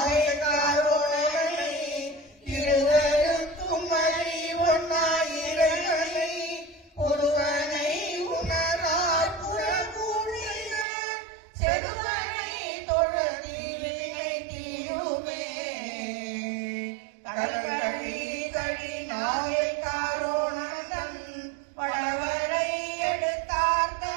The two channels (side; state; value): left; drops out; at 10.9 s